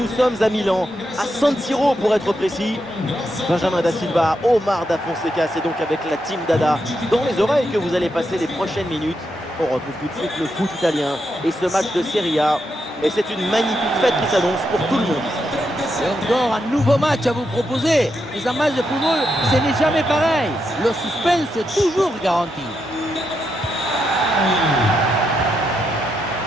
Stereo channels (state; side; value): normal; both; correlation 0.83